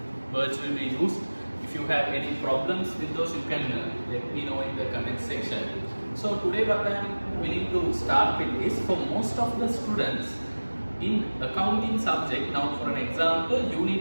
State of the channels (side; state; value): both; inverted; correlation -1.00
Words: words will be used. If you have any problems with those, you can let me know in the comment section. So today what I am willing to start with is, for most of the students in accounting subject, now for an example, you